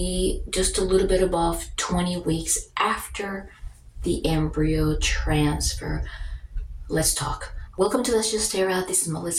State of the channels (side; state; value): both; identical; correlation 1.00